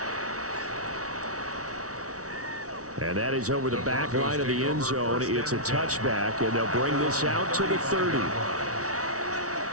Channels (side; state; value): left; late; 0.66 ms